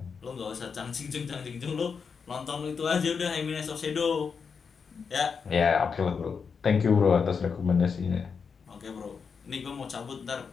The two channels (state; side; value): quieter; right; 5.8 dB